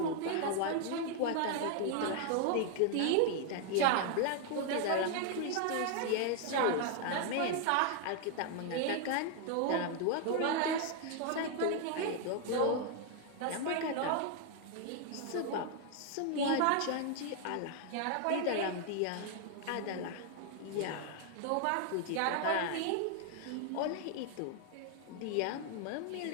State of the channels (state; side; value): different; both; correlation 0.00